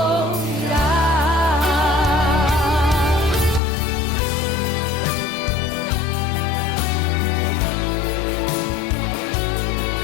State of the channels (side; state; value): right; drops out; at 3.6 s